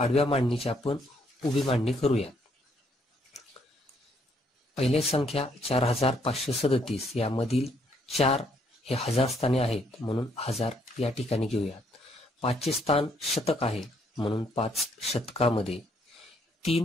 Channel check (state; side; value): normal; both; correlation 0.69